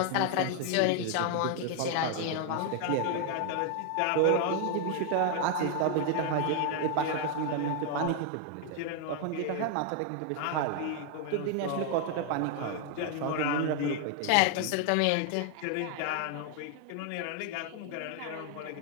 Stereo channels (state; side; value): different; both; correlation 0.00